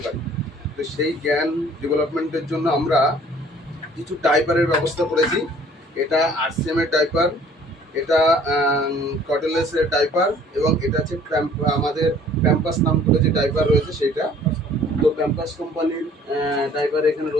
পারি। তো সেই জ্ঞান ডেভেলপমেন্টের জন্য আমরা কিছু ডাইপারের ব্যবস্থা করেছি। এটা আরসিএম এর ডাইপার, এটা কটলেসের ডাইপার এবং এটা হচ্ছে আমাদের প্যাম্পাস নাম করে যে ডাইপার রয়েছে সেইটা। তো প্যাম্পাস কোম্পানির ডাইপার এখানে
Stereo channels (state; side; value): normal; both; correlation 0.54